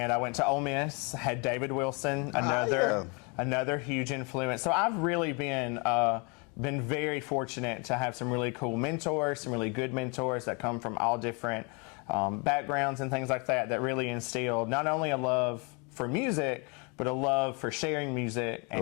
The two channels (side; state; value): right; quieter; 32.9 dB